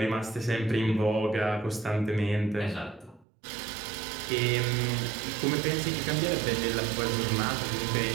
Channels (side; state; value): left; drops out; at 3.2 s